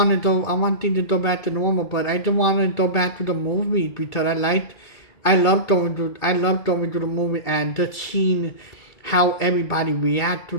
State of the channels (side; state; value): right; late; 2.3 ms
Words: to go. I want things to go back to normal, but I don't want to go back to the movies because I love going to the movie and just seeing how everybody react to